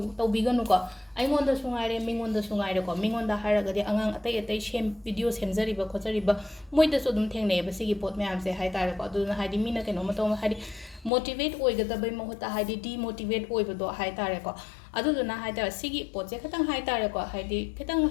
to biganu ko aingon da sungaire mingon da sungaire ko mingon da haraga di angang atai shem video semjari ba khojari ba moi da so dum thengne ba sigi pot me am se hai tare ko adu na hai mina kaino ma to hai motivate oigada bai mohota hai demotivate oibado hai tare ko adu na hai tare sigi pot je khatang hai tare ko hai khatang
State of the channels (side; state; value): right; drops out; at 11.1 s